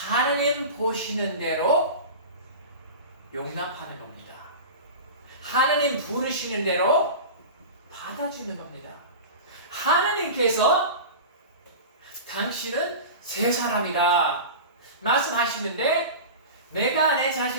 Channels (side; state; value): both; inverted; correlation -0.31